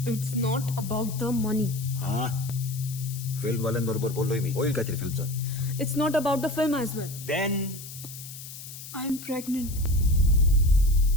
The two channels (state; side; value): noise; left; hiss, 13 dB below the sound